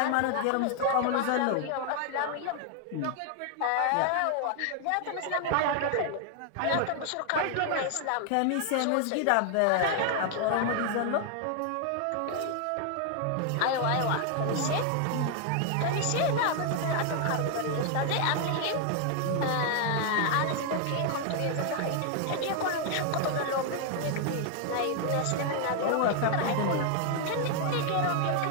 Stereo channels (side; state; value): both; different; correlation 0.00